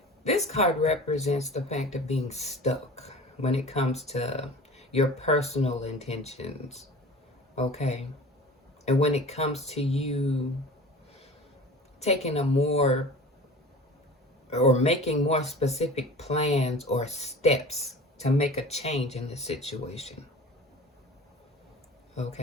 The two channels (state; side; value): normal; both; correlation 0.40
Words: this card represents the fact of being stuck when it comes to your personal intentions, okay? And when it comes to you taking making more specific plans or steps to make a change in the situation,